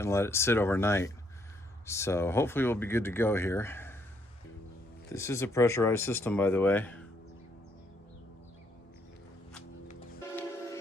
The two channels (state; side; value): normal; both; correlation 0.71